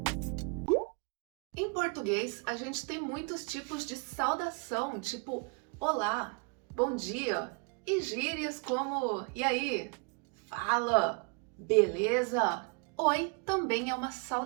Em português, a gente tem muitos tipos de saudação, tipo olá, bom dia, e gírias como e aí, fala, beleza. Oi também é uma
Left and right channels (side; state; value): left; quieter; 35.0 dB